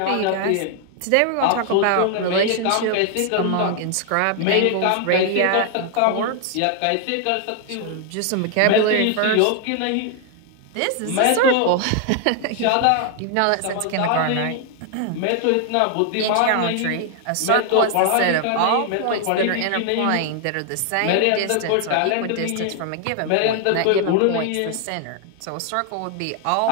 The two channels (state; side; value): different; both; correlation 0.00